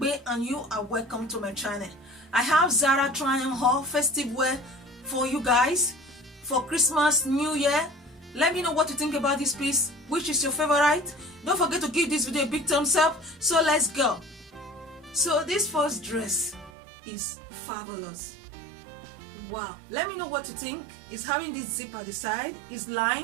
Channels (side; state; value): left; drops out; at 16.7 s